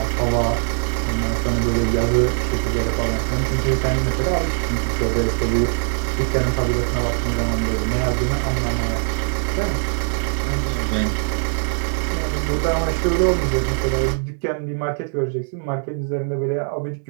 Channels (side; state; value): left; silent; 65 dB below the other